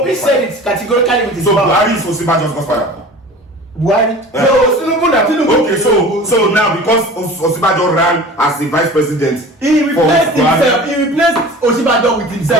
said it categorically with his So mouth. Buhari is Osibajo's godfather. Buhari. Yeah. No, Tinubu na Okay, so now because Osibajo ran as the vice president, He for replaced Buhari, himself. He replaced Oshibajo with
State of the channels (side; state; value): both; normal; correlation 0.40